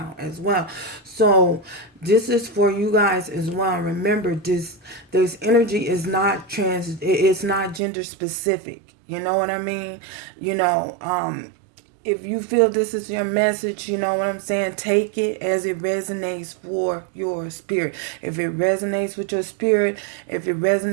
as well. So this is for you guys as well. Remember, this energy is not it's not gender specific. You know what I mean? If you feel this is your message, you know what I'm saying? Take it as it resonates for your spirit. If it resonates with your spirit, if it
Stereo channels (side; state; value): left; drops out; at 7.8 s